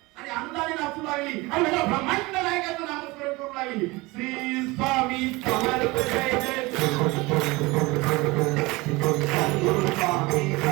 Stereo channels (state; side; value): quieter; left; 22.9 dB